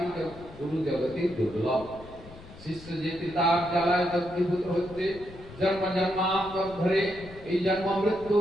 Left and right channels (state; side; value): noise; left; rumble, 18 dB below the sound